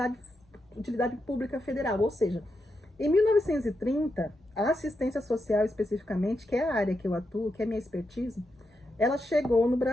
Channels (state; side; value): normal; both; correlation 0.85